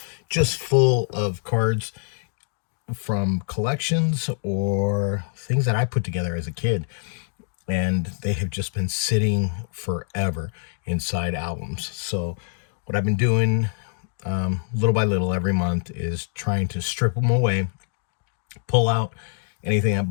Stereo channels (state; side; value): silent; right; digital silence